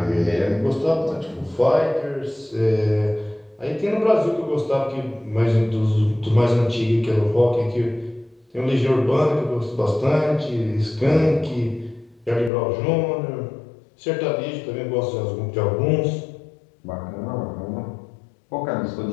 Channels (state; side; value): drops out; right; at 12.5 s